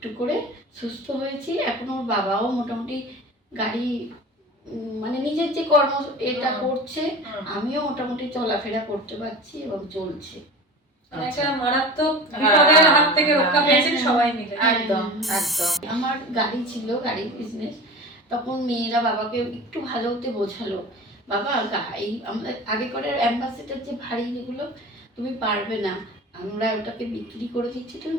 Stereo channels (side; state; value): both; normal; correlation 0.36